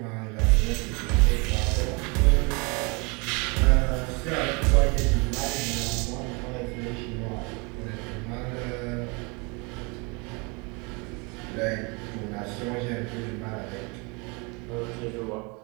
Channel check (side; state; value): left; quieter; 30.1 dB